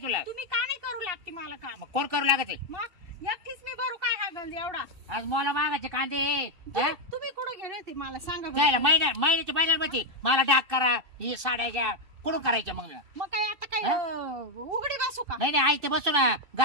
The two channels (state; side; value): late; left; 2.6 ms